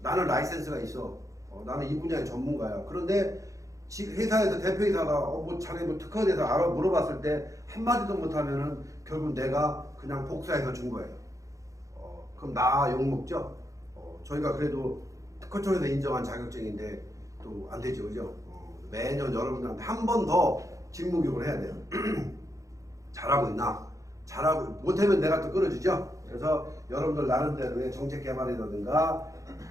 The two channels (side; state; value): left; late; 0.16 ms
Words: 나는 라이센스가 있어. 나는 이 분야의 전문가야. 그런데 회사에서 대표이사가 뭐 자네 뭐 특허에 대해서 알아 물어봤을 때 한마디도 못하면은 결국 내가 그냥 복사해서 준 거예요. 그럼 나 욕먹죠? 저희가 그래도 특허청에서 인정한 자격증인데 또 안 되죠, 그죠? 매년 여러분들한테 한 번 더 직무교육을 해야 돼요. 잘하고 있나? 잘하고 못하면 내가 또 끌어주죠. 그래서 여러분들 나름대로의 정책 개발이라든가